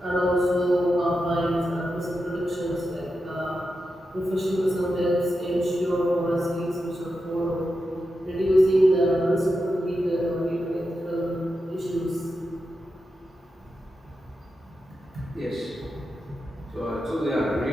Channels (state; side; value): normal; both; correlation 0.89